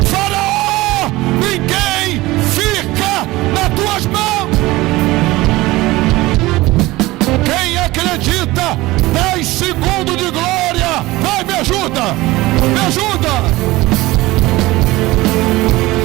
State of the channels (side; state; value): left; quieter; 19.4 dB